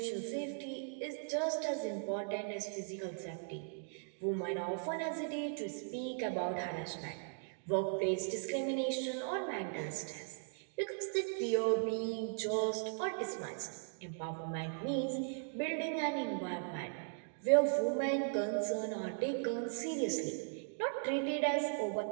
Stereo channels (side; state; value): left; silent; digital silence